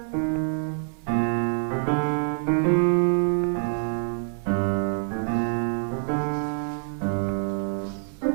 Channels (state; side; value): silent; left; 59 dB below the other